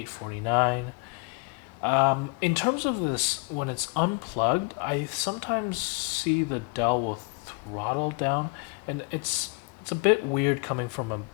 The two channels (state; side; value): quieter; right; 31.8 dB